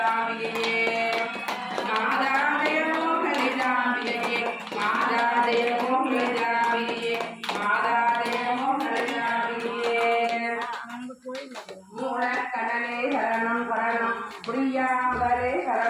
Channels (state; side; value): identical; both; correlation 1.00